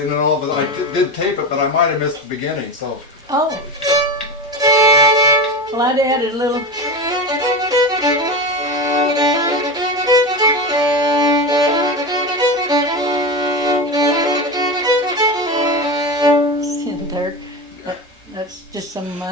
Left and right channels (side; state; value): both; normal; correlation 0.22